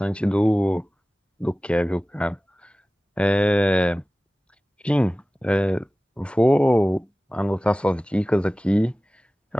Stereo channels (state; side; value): normal; both; correlation 0.97